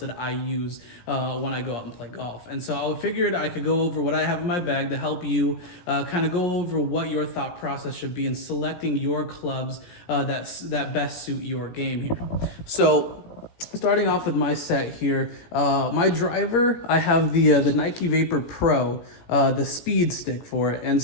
that I use when I go out and play golf. And so I figured I could go over what I have in my bag to help you kind of go over what your thought process should be in selecting your clubs that best suit your game here. So starting off with my set here, my driver, I have the Nike Vapor Pro, the speed stick for it. And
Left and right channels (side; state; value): right; late; 17 ms